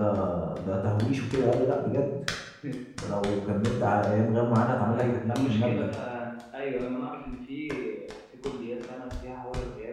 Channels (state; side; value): identical; both; correlation 1.00